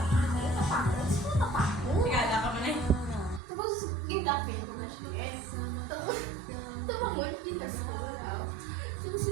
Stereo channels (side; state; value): left; drops out; at 3.4 s